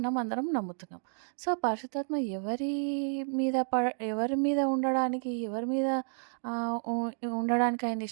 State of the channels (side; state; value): left; silent; digital silence